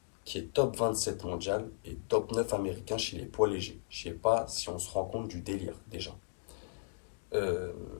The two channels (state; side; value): silent; right; digital silence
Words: qui est top 27 mondial et top 9 américain chez les poids légers. Je sais pas si on se rend compte du délire déjà. Euh,